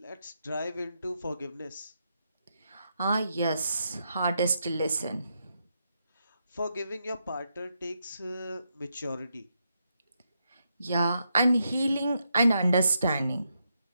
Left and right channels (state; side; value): inverted; both; correlation -0.82